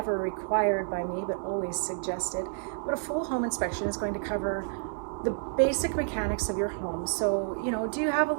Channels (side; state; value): left; silent; 58 dB below the other